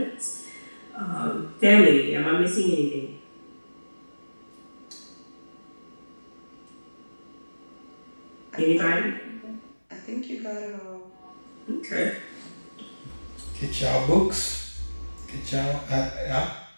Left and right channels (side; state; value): both; inverted; correlation -1.00